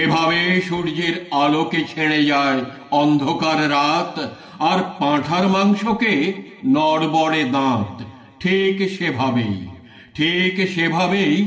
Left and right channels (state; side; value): identical; both; correlation 1.00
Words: সূর্যের আলোকে ছেড়ে যায় অন্ধকার রাত, আর পাঁঠার মাংসকে নড়বড়ে দাঁত, ঠিক সেভাবেই